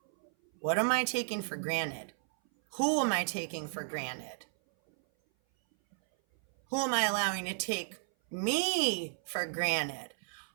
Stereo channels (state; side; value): silent; left; 56 dB below the other